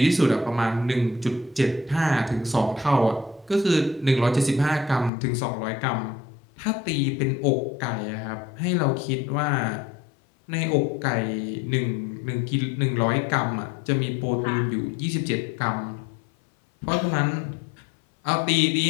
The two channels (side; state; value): right; drops out; at 5.1 s